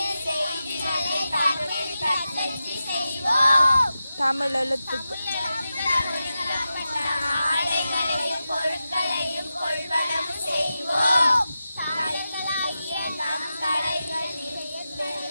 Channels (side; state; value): both; inverted; correlation -0.91